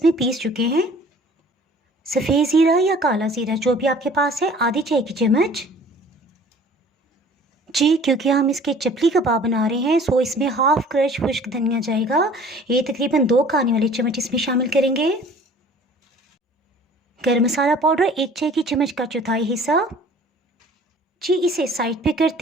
पीस चुके हैं। सफ़ेद ज़ीरा या काला ज़ीरा जो भी आपके पास है, आधी चाय की चम्मच। जी क्योंकि हम इसके चपली कबाब बना रहे हैं सो इसमें हाफ क्रश खुश्क धनिया जाएगा। ये तकरीबन 2 खाने वाले चम्मच इसमें शामिल करेंगे। गरम मसाला पाउडर 1 चाय की चम्मच का चौथाई हिस्सा। जी इसे साइड पे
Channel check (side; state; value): both; normal; correlation 0.50